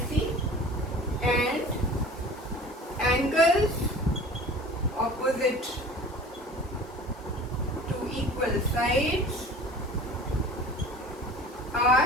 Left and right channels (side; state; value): both; normal; correlation 0.43